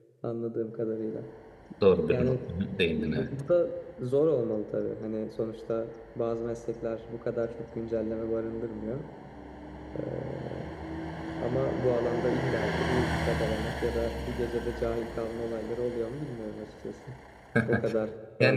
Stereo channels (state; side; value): identical; both; correlation 1.00